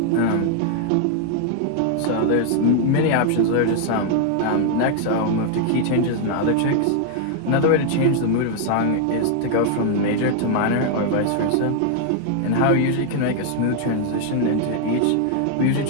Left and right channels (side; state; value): both; different; correlation 0.00